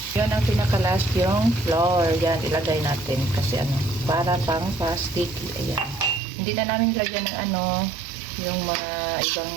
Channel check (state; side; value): drops out; left; at 6.2 s